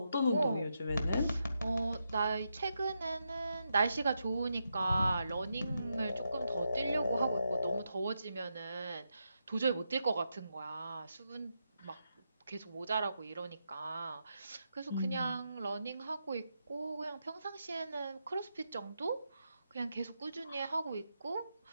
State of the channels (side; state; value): both; inverted; correlation -0.84